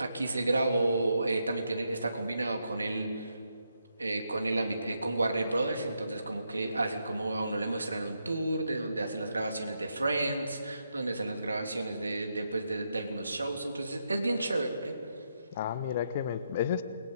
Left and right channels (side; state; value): both; inverted; correlation -0.80